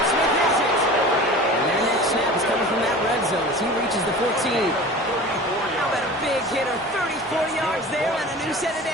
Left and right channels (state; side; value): normal; both; correlation 0.38